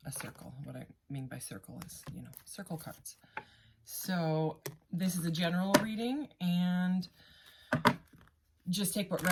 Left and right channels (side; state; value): both; identical; correlation 1.00